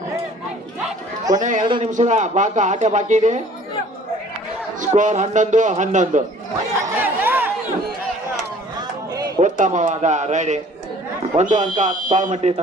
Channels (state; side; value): normal; both; correlation 0.52